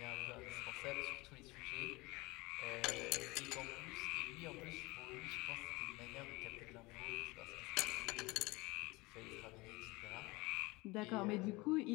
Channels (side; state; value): right; quieter; 23.0 dB